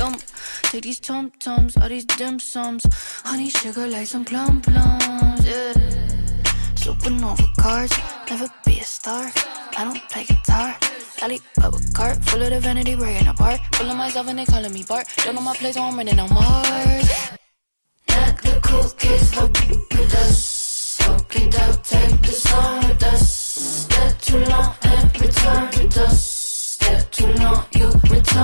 Take these tum-tums, all these dim sums, honey sugar like some plum plums, yeah. Supernova cards, never be a star. I don't play guitar. Alley bubble cart, full of the vanity, breaking apart. Full of myself and they calling me Bart. Don't know my place, so I'm running on Mars. Let the cool kids hope with us. Soak it up, take the song with us. Step too long and return to dust. Step too long, you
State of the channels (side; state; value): both; inverted; correlation -1.00